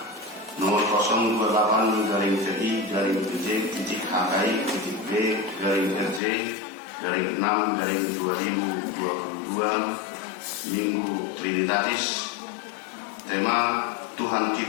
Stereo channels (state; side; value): drops out; right; at 6.2 s